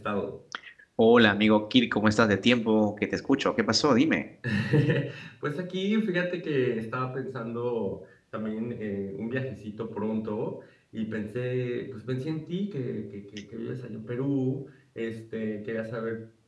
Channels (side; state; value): both; identical; correlation 1.00